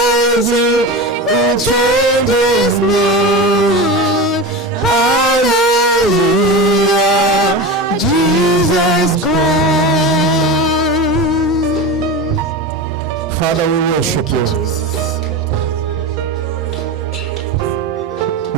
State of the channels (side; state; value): both; normal; correlation 0.26